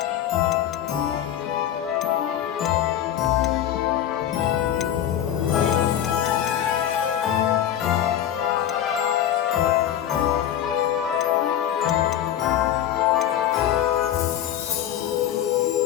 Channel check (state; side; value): quieter; right; 10.8 dB